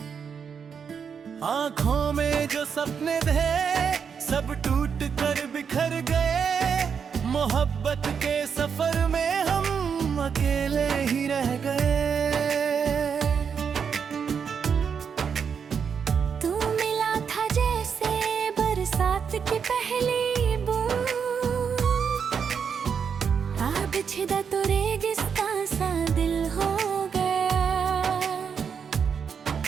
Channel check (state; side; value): quieter; left; 6.7 dB